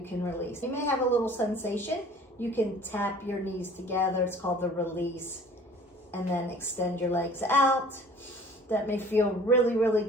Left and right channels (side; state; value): both; normal; correlation 0.49